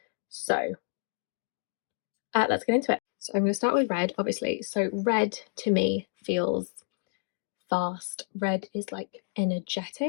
So let's get into it. So I'm going to start with red, obviously. So red to me feels fast. Red is like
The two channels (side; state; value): right; silent; digital silence